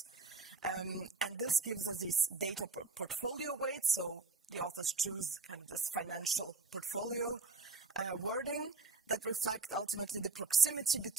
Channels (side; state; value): left; quieter; 3.9 dB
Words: And this gives us these data portfolio weights, so the authors choose kind of this financial portfolio wording that reflect ultimately the proximity